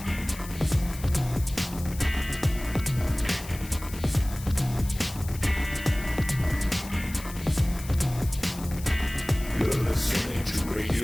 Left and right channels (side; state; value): left; noise; hiss, 15 dB below the sound